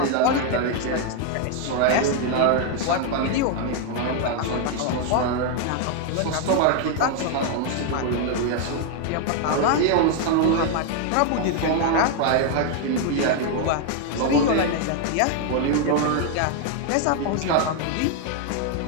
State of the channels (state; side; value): different; both; correlation 0.01